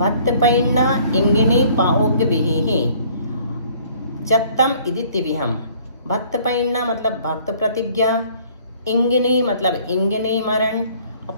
पैन्ना इंगिणी पाओग्य विहि चत्तम इति तिविहम। भक्त पैन्ना मतलब भक्त प्रतिज्ञा, इंगिनी मतलब इंगिनी मरण,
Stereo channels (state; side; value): inverted; both; correlation -0.57